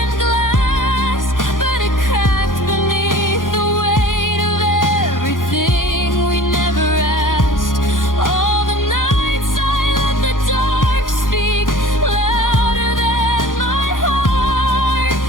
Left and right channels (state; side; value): late; right; 0.89 ms